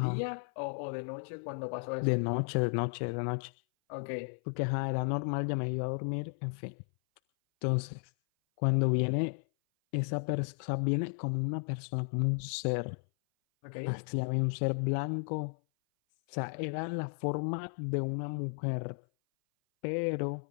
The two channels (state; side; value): silent; right; 55 dB below the other